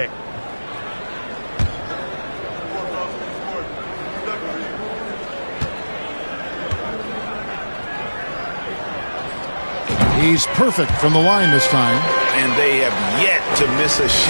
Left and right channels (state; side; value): inverted; both; correlation -1.00